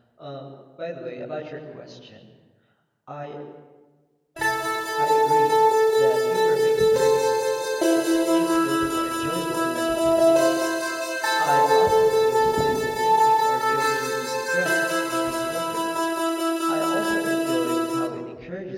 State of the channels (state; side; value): identical; both; correlation 1.00